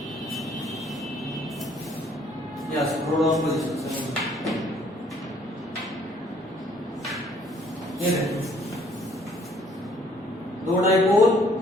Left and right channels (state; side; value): normal; both; correlation 0.62